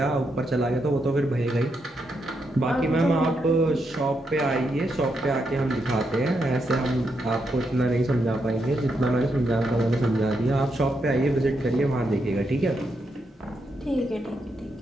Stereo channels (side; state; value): both; normal; correlation 0.81